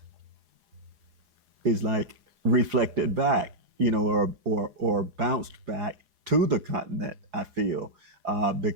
like reflected back, or bounced back to the continent. I feel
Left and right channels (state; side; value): late; left; 4.8 ms